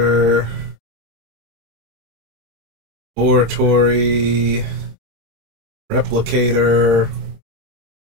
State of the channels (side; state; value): left; late; 26 ms